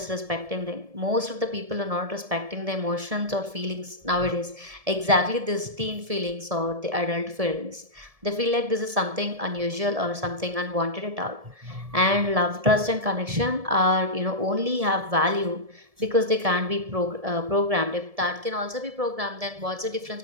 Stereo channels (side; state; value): left; late; 1.7 ms